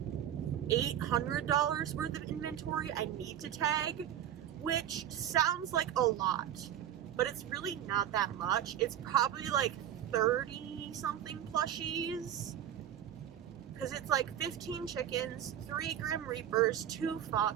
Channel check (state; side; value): quieter; left; 10.6 dB